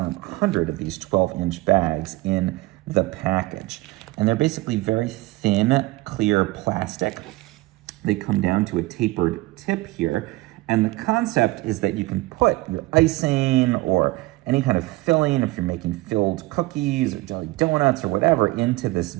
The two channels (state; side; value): quieter; left; 20.3 dB